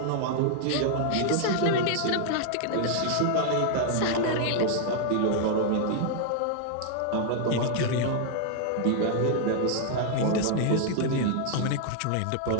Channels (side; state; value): both; different; correlation 0.00